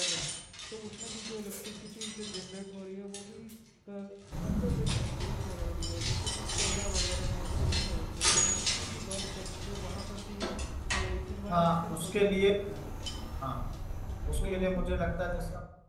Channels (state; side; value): identical; both; correlation 1.00